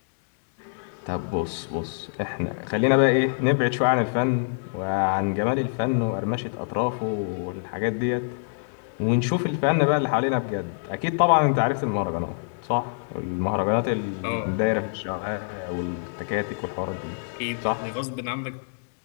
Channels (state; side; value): silent; right; digital silence